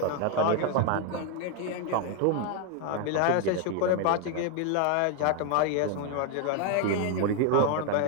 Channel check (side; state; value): both; different; correlation 0.01